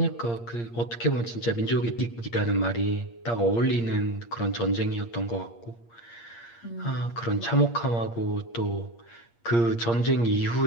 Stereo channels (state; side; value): late; right; 8.6 ms